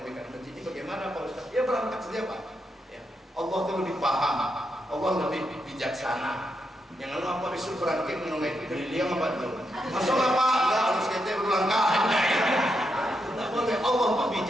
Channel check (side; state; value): both; normal; correlation 0.82